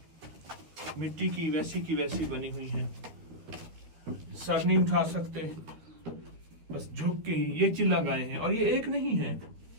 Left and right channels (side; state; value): left; late; 13 ms